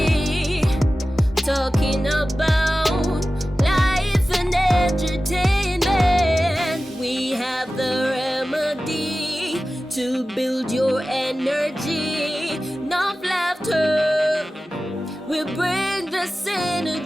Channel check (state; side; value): normal; both; correlation 0.95